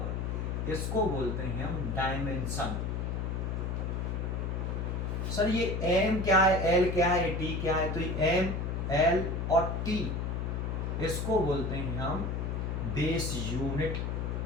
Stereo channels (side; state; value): left; noise; hum, 1 dB below the sound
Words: इसको बोलते हैं हम डायमेंशन। सर ये m क्या है, l क्या है, t क्या है? तो ये m, l और t, इसको बोलते हैं हम बेस यूनिट